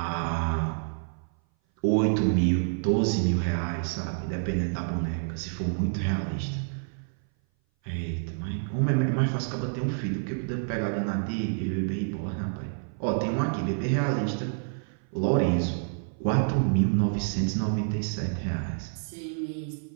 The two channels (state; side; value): silent; left; 58 dB below the other